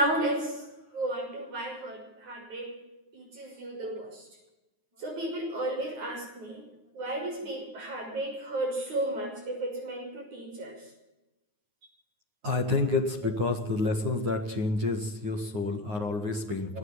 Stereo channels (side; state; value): left; late; 9.6 ms